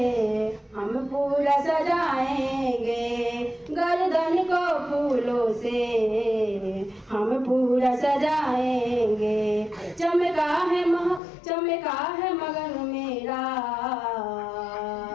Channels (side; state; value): right; drops out; at 11.2 s